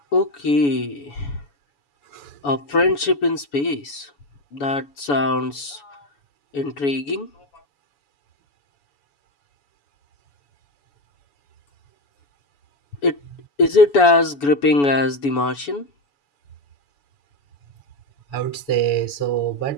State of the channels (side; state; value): right; late; 7.0 ms